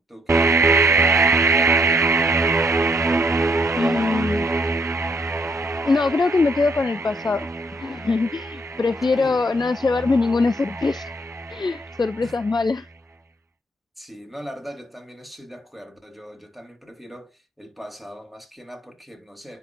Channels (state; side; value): normal; both; correlation 0.69